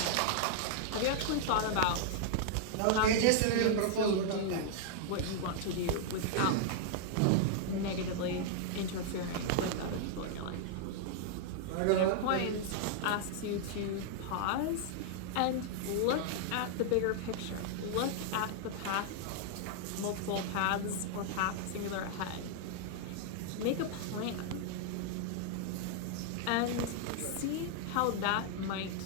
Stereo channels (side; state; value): both; different; correlation -0.01